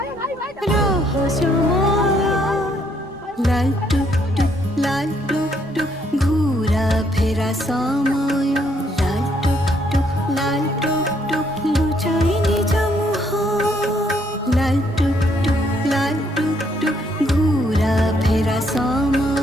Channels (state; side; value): normal; both; correlation 0.70